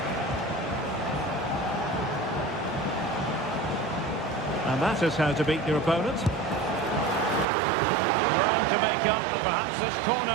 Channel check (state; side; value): drops out; left; at 7.5 s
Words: And that is how to beat your opponent. Round to make up, and perhaps this corner